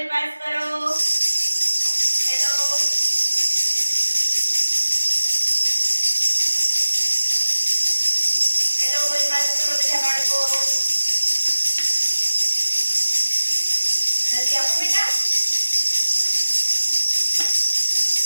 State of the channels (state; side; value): inverted; both; correlation -1.00